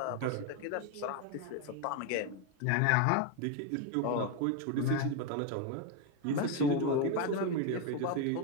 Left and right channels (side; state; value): both; different; correlation 0.02